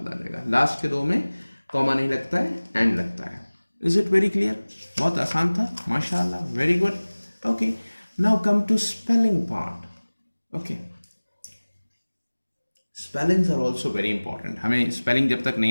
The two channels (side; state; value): both; inverted; correlation -1.00